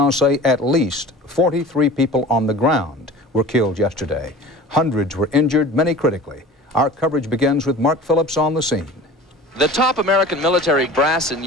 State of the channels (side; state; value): both; normal; correlation 0.40